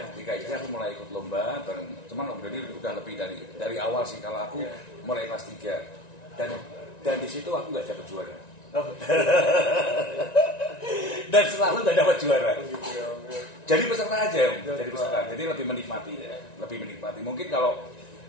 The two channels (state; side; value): late; right; 1.9 ms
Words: SD aku mulai ikut lomba bareng. Cuman Om Dani udah lebih dari awal sih. Kalau aku mulai kelas 3 dan di situ aku nggak dapat juara. Dan selalu nggak dapat juara. Jadi peserta aja Om. Jadi peserta. Jadi lebih menikmati. Mungkin kalau